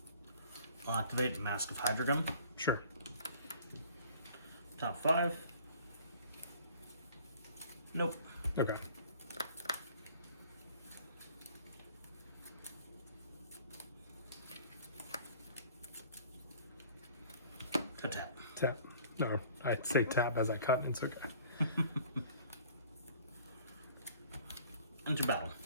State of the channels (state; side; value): inverted; both; correlation -0.51